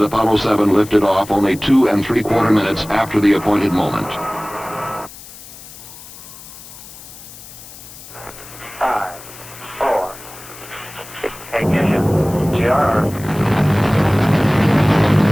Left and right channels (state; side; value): noise; left; hiss, 17 dB below the sound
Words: Apollo 7 lifted off only 2 3/4 minutes after the appointed moment. 5, 4, ignition, GR.